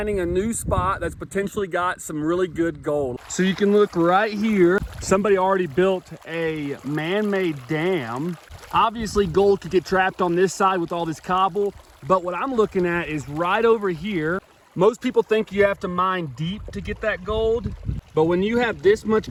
a new spot that's potentially got some really good gold. So you can look right here. Somebody already built a man-made dam. Obviously gold could get trapped on this side with all this cobble, but what I'm looking at is right over here. Most people think you have to mine deep to get that gold, but when you have this much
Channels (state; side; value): identical; both; correlation 1.00